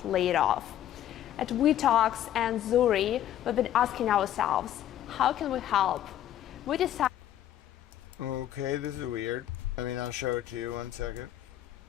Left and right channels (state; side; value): quieter; right; 11.7 dB